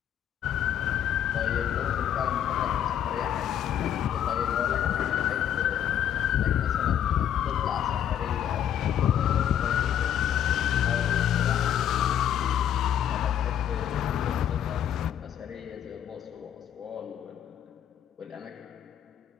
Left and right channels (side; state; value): right; quieter; 10.0 dB